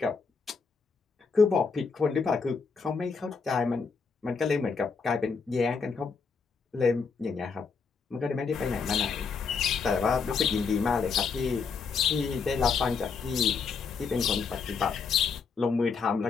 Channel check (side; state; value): right; quieter; 5.3 dB